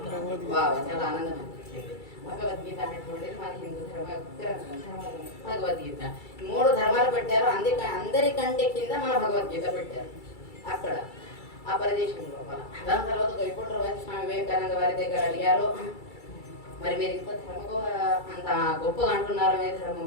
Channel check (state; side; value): late; right; 2.3 ms